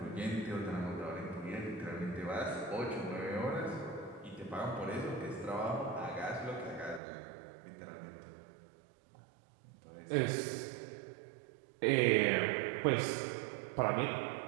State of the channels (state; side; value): drops out; left; at 7.0 s